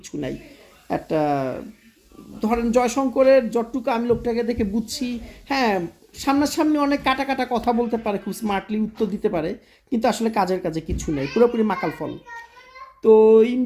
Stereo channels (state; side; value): identical; both; correlation 1.00